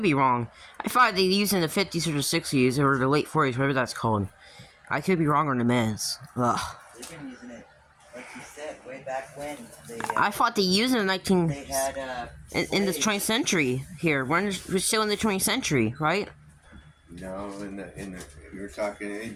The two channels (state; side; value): identical; both; correlation 1.00